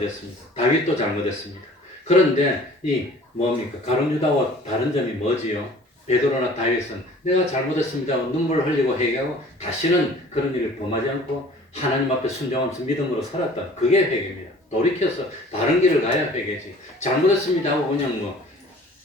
다윗도 잘못했습니다. 그런데 이 뭡니까? 가룟 유다와 다른 점이 뭐지요? 베드로나 다윗은 내가 잘못했습니다 하고 눈물을 흘리고 회개하고 다시는 그런 일을 범하지 않고 하나님 앞에 순종하면서 믿음으로 살았다. 그게 회개입니다. 돌이켜서 다른 길을 가야 회개지. 잘못했습니다 하고 그냥 뭐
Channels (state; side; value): normal; both; correlation 0.49